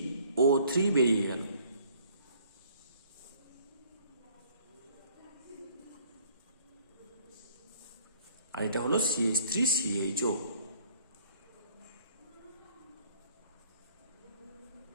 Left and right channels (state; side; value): inverted; both; correlation -0.59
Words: বেরিয়ে গেল। আর এটা হলো CH3CHO।